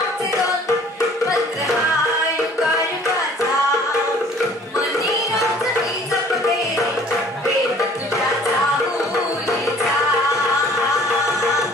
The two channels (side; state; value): both; normal; correlation 0.53